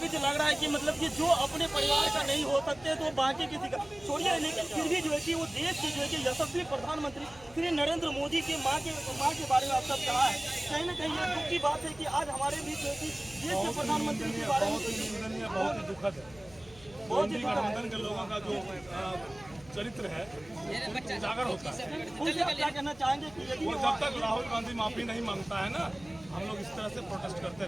लग रहा है कि मतलब कि जो अपने परिवार का नहीं हो सकते तो बाकी किसी का छोड़िए, लेकिन फिर भी जो है कि वो देश के जो है कि यशस्वी प्रधानमंत्री श्री नरेंद्र मोदी के माँ के बारे में आप सब कहा है। कहीं ना कहीं ये दुख की बात है कि आज हमारे बीच जो है कि देश के प्रधानमंत्री के बारे में बहुत ही दुखद है। बहुत ही गठबंधन के लोगों का जो चरित्र है उजागर होता है। उनसे आप क्या कहना चाहेंगे कि यदि वो जब तक राहुल गांधी माफी नहीं मांगता है ना, हम लोग इस तरह से प्रोटेस्ट करते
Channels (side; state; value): left; noise; hum, 23 dB below the sound